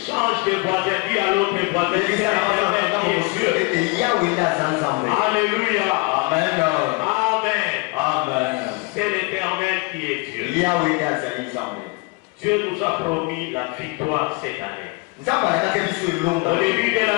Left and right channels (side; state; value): right; quieter; 27.2 dB